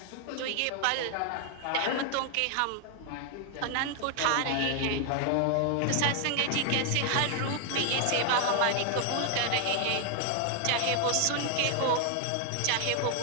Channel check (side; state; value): both; different; correlation 0.00